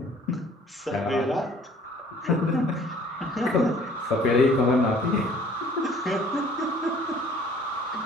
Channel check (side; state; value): both; normal; correlation 0.55